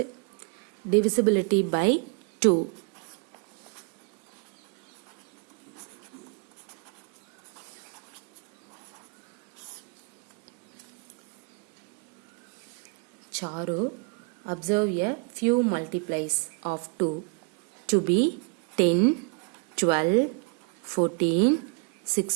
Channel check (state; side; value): quieter; left; 35.3 dB